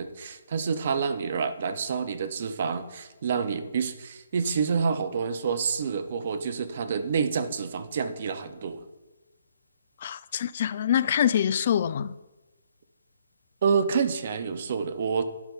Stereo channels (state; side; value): inverted; both; correlation -0.67